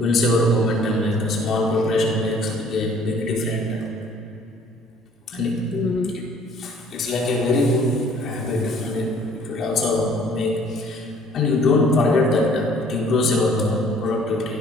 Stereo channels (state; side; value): normal; both; correlation 0.56